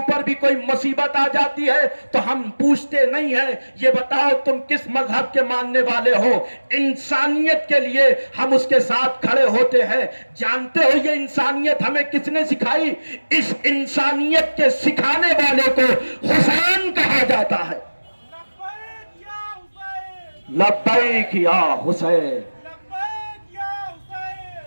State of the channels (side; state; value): both; inverted; correlation -1.00